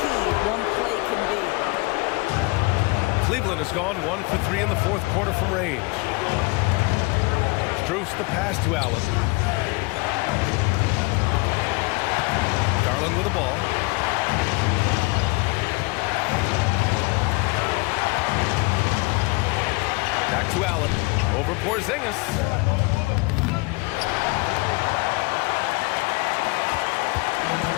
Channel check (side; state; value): right; quieter; 25.9 dB